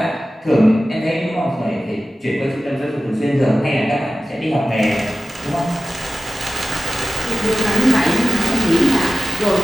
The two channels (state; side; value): normal; both; correlation 0.95